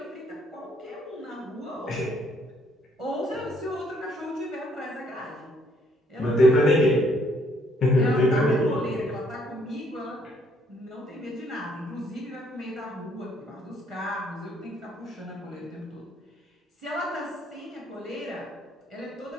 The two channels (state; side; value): normal; both; correlation 0.67